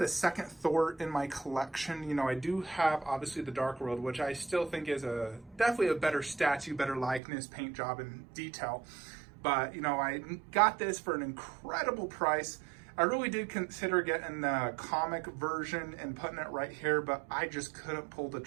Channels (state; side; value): drops out; left; at 7.2 s